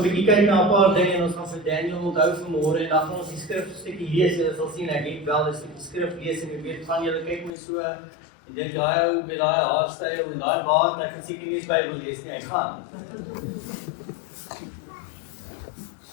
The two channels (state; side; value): drops out; right; at 7.5 s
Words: bietjie kyk na 'n paar dinge en ons gaan vir Daniel onthou vanmôre en dan gaan ons die skrifstukkie lees. Julle sal sien ek het wel 'n stukkie skrif lees en ek weet van julle kyk my so en dink daai ou met daai haarstyl en daai baard, ek kan seker nie eens Bybel lees nie, hy gaan.